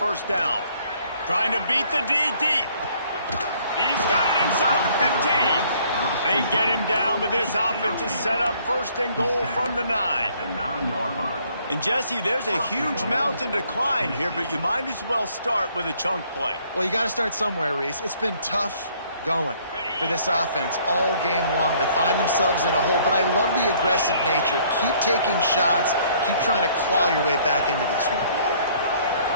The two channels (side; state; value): both; inverted; correlation -0.61